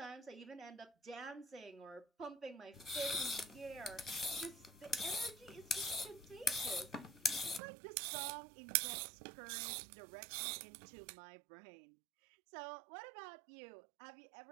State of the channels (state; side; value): drops out; left; at 7.6 s